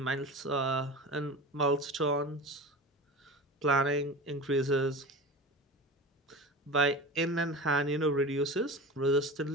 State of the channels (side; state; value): both; normal; correlation 0.31